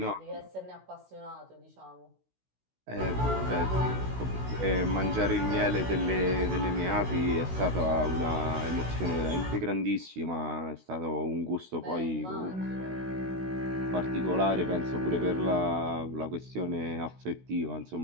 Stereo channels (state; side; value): late; left; 16 ms